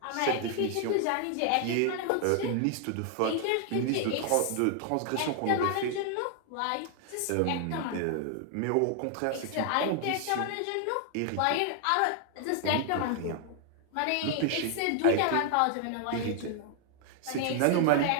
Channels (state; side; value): different; both; correlation 0.00